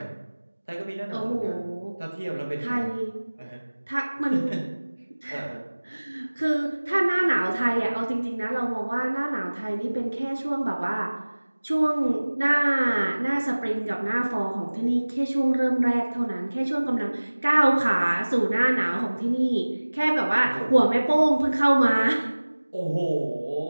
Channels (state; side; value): inverted; both; correlation -1.00